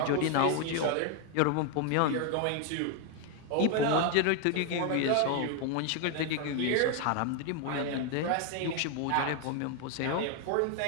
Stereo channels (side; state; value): both; different; correlation 0.00